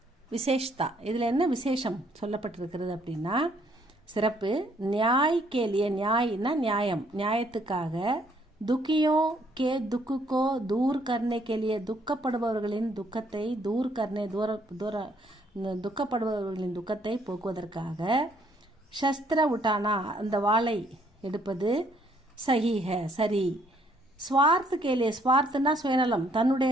விசேஷ்தா, இதில் என்ன விசேஷம் சொல்லப்பட்டிருக்கிறது அப்படின்னா, சிறப்பு. நியாய் கேலிய, நியாய்னா நியாயம், நியாயத்துக்காக, துக்கியோ கே துக்குக்கோ தூர் கர்னே கேலிய, துக்கப்படுபவர்களின் துக்கத்தை, தூர் கர்னே துக்கப்படுபவர்களின் துக்கத்தை போக்குவதற்காக, சஸ்திர உட்டானா அந்த வாளை எடுப்பது, சஹீஹ சரி. ஸ்வார்த்த கேலிய, ஸ்வார்த்தனா சுயநலம்,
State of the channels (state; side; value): normal; both; correlation 0.67